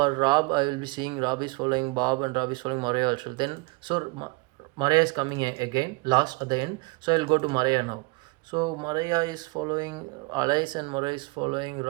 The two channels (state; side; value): quieter; left; 26.1 dB